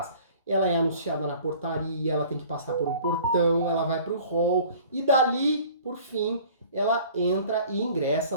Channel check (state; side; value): inverted; both; correlation -0.49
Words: Ela é anunciada na portaria, ela tem que passar por um portão, ela vai para o hall e dali, por fim, ela entra e ingressa